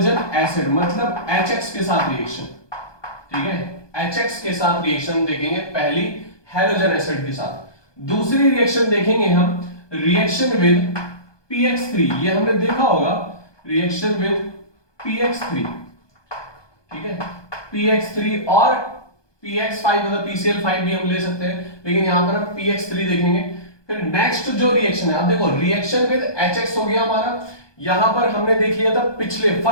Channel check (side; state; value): right; late; 1.2 ms